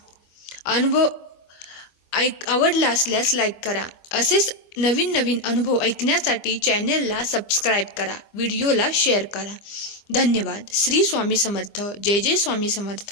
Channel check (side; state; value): right; late; 25 ms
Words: अनुभव आवडला असल्यास लाईक करा. असेच नवीन अनुभव ऐकण्यासाठी चॅनेलला सबस्क्राईब करा, व्हिडिओला शेअर करा. धन्यवाद. श्री स्वामी समर्थ. जय जय स्वामी